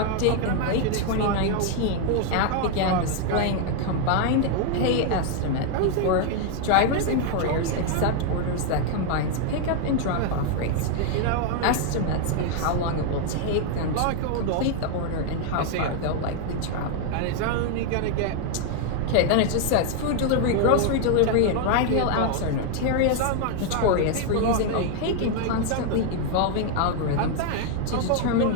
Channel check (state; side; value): different; both; correlation 0.00